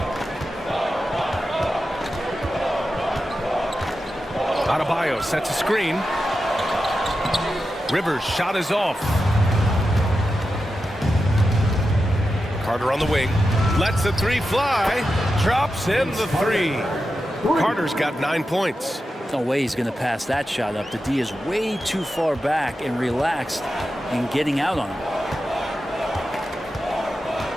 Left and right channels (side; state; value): both; normal; correlation 0.90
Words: Adebayo sets a screen. Rivers' shot is off. Carter on the wing. Lets the 3 fly. Drops in the 3. Carter's got 9 points. No way he's going to pass that shot up. The D is way too far back and relaxed in getting out on him.